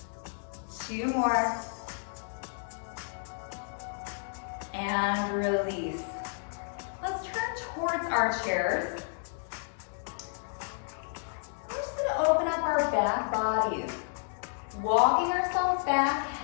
2 more. And release. Let's turn towards our chairs. We're just gonna open up our back bodies. Walking ourselves back,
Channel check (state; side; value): silent; right; 57 dB below the other